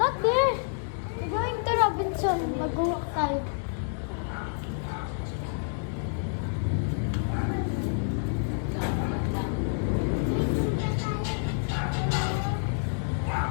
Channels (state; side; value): silent; right; digital silence